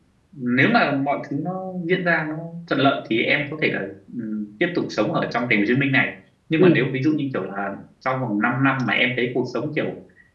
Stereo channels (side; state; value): both; identical; correlation 1.00